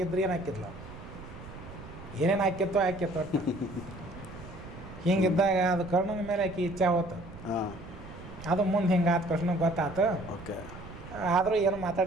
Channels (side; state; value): right; noise; rumble, 15 dB below the sound